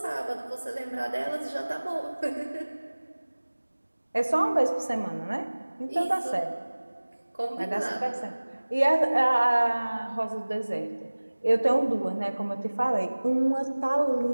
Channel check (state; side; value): inverted; both; correlation -1.00